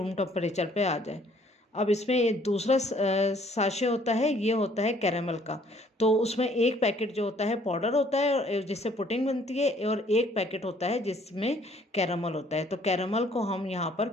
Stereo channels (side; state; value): both; normal; correlation 0.61